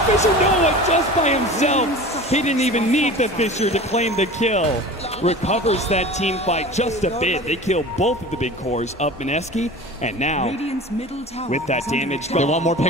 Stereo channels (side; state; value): both; normal; correlation 0.37